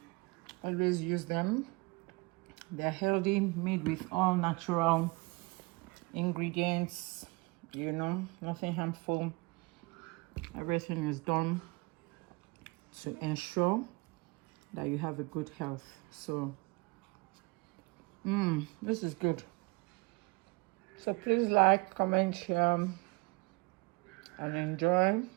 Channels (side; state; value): left; quieter; 26.8 dB